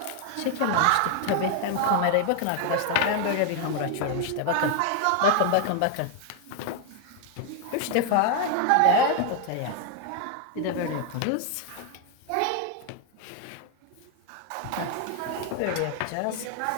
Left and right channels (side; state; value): both; different; correlation 0.01